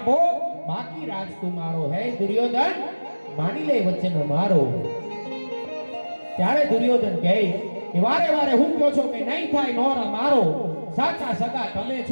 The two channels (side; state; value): both; inverted; correlation -1.00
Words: બાકી રાજ તુમારો. હે દુર્યોધન માની લે વચન મારો. ત્યારે દુર્યોધન કહે કે વારે વારે હું કહો છો કે નહીં થાય નોરા મારો, સાચા સગા તમે